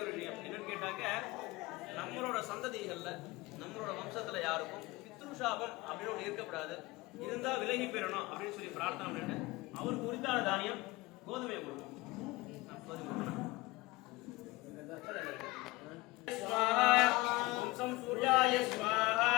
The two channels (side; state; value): right; quieter; 21.3 dB